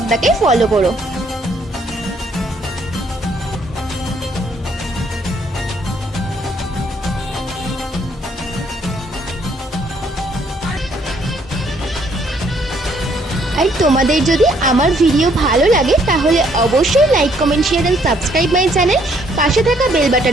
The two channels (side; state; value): both; normal; correlation 0.67